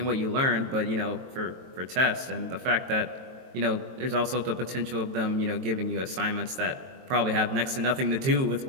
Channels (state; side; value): late; left; 23 ms